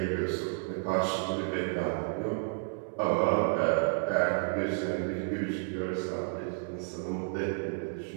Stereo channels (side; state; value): left; silent; 57 dB below the other